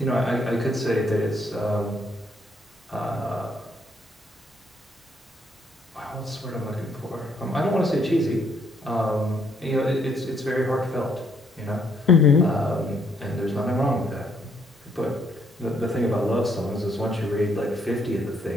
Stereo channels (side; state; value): both; normal; correlation 0.70